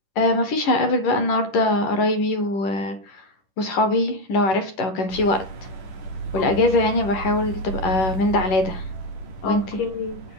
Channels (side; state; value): right; late; 10 ms